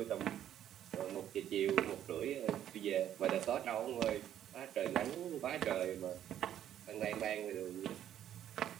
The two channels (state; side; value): quieter; left; 10.9 dB